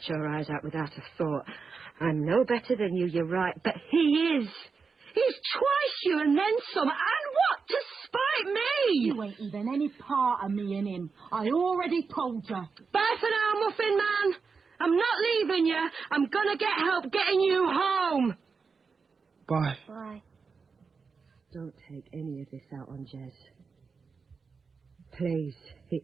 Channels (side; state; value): left; quieter; 5.1 dB